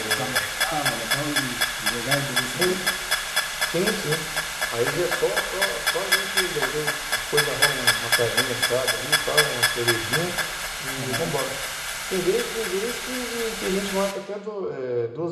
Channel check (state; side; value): identical; both; correlation 1.00